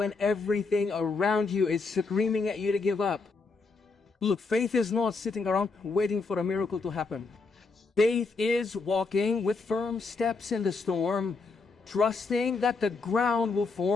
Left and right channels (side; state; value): right; quieter; 4.2 dB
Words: everything around you is screaming at you to give up. Look, faith is not sitting around waiting for a miracle to happen. Faith is walking with firm steps in the storm, trusting that the ground will